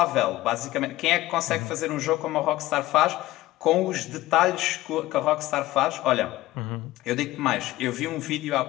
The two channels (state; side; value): quieter; right; 16.9 dB